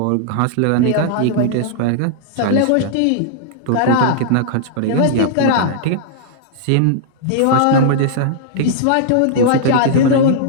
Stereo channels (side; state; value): both; different; correlation -0.01